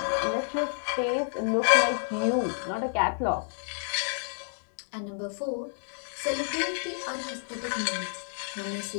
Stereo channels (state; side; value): silent; right; digital silence